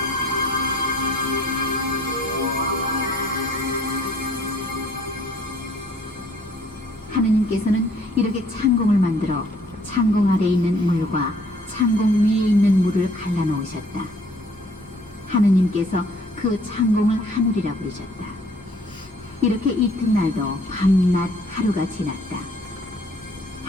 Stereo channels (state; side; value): normal; both; correlation 0.59